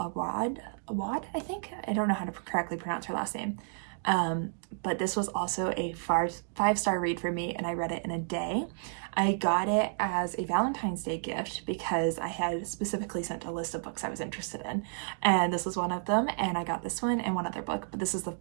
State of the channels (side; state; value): left; silent; digital silence